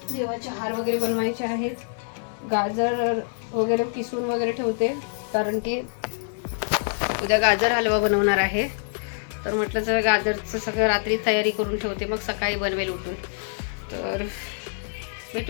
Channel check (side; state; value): right; silent; digital silence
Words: देवाचे हार वगैरे बनवायचे आहेत. गाजर वगैरे किसून वगैरे ठेवते, कारण की उद्या गाजर हलवा बनवणार आहे. तर म्हटलं जर गाजरचं सगळं रात्री तयारी करून ठेवते, मग सकाळी बनवेल उठून. तर